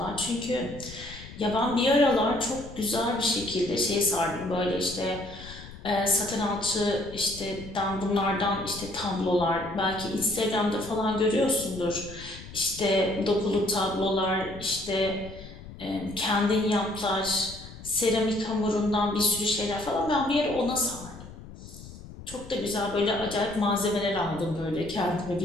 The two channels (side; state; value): left; noise; rumble, 15 dB below the sound